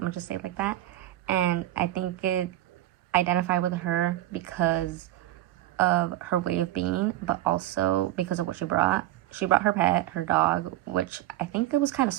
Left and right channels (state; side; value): quieter; left; 14.6 dB